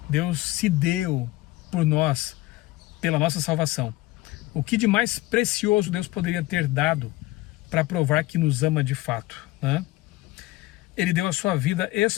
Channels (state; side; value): quieter; right; 18.6 dB